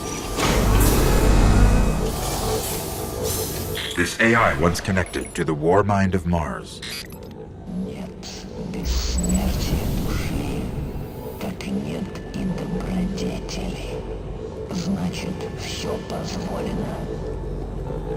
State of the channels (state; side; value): identical; both; correlation 1.00